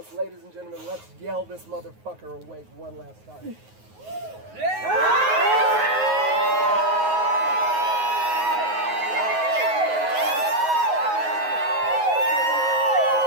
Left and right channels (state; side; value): late; left; 9.4 ms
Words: Ladies and gentlemen, let's yell this motherfucker awake one last time.